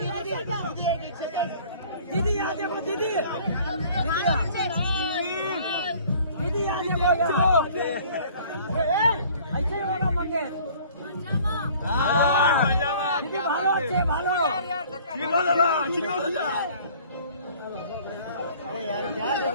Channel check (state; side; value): inverted; both; correlation -0.52